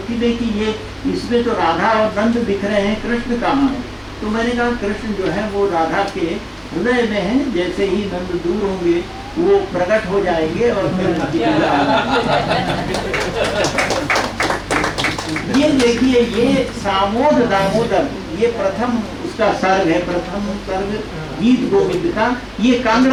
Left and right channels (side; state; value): both; identical; correlation 1.00